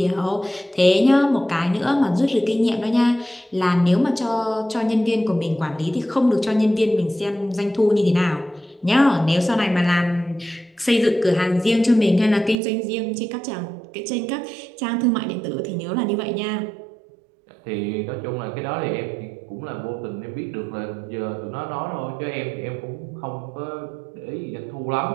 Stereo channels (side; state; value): left; drops out; at 12.6 s